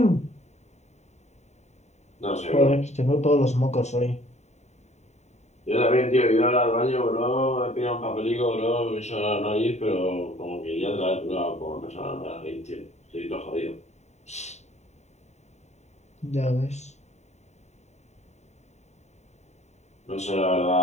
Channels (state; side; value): late; right; 0.32 ms